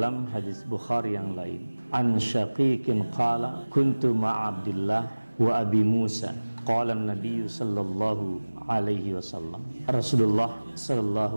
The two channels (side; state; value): both; inverted; correlation -1.00